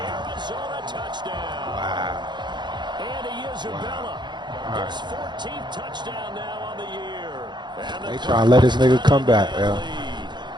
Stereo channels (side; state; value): left; late; 0.21 ms